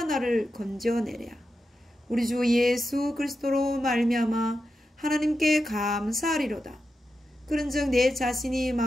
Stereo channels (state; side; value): normal; both; correlation 0.89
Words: 나를 건져내랴. 우리 주 예수 그리스도로 말미암아 하나님께 감사하리로다. 그런즉 내 자신이